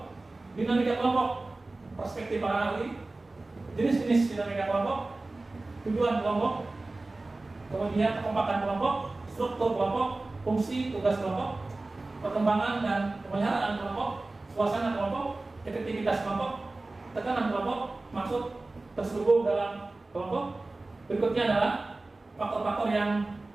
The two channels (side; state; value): left; quieter; 3.1 dB